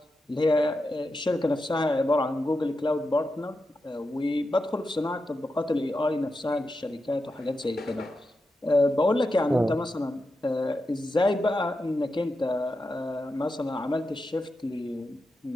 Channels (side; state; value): both; normal; correlation 0.88